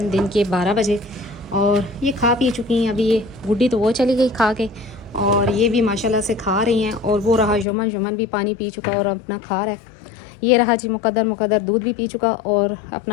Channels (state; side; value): drops out; right; at 7.7 s